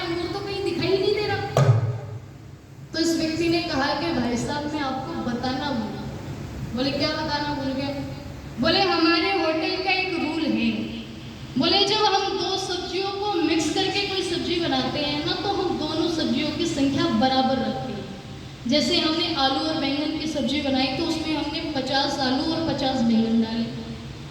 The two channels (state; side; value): identical; both; correlation 1.00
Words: तो कहीं दिखाई नहीं दे रहा। तो इस व्यक्ति ने कहा कि भाई साहब मैं आपको बताना भूला। बोले क्या बताना भूल गए? बोले हमारे होटल का एक रूल है, बोले जब हम दो सब्जियों को मिक्स करके कोई सब्जी बनाते हैं ना, तो हम दोनों सब्जियों की संख्या बराबर रखते हैं। जैसे हमने आलू और बैंगन की सब्जी बनाई तो उसमें हमने 50 आलू और 50 बैंगन डाले।